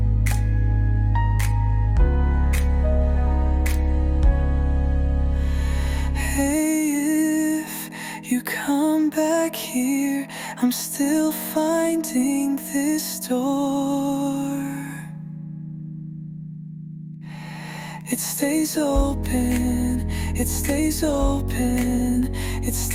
You come back here, I'm still finding this door. It stays open, it stays open, it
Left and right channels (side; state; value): both; identical; correlation 1.00